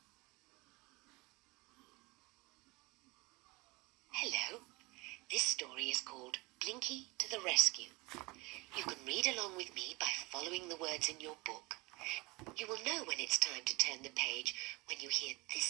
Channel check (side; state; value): left; quieter; 24.4 dB